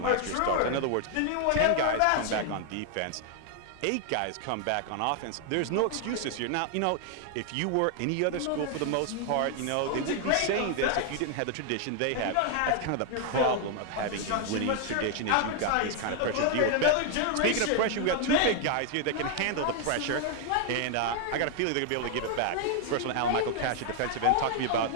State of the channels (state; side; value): different; both; correlation 0.00